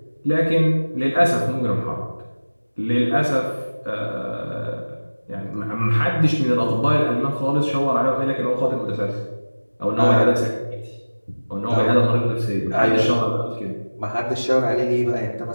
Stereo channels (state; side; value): inverted; both; correlation -1.00